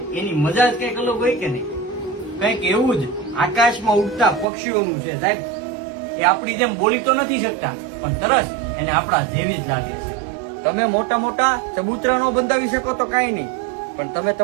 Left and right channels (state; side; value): drops out; left; at 4.5 s